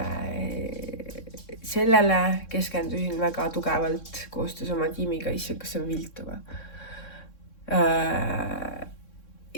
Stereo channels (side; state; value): right; late; 3.6 ms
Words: sellele keskendusin väga tugevalt koostöös oma tiimiga, kas on viltuva.